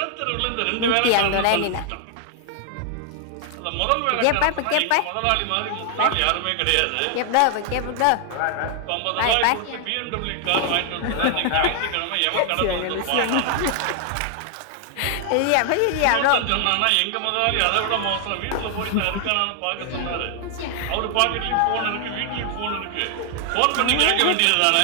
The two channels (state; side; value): different; both; correlation 0.00